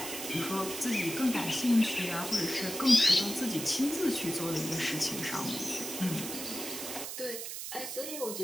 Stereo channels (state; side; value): noise; right; hiss, 7 dB below the sound